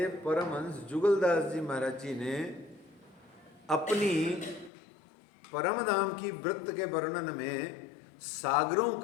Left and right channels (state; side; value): drops out; right; at 4.7 s